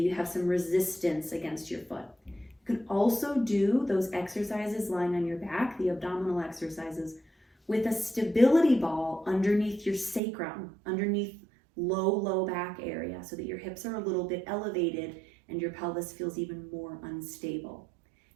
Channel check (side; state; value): left; drops out; at 10.2 s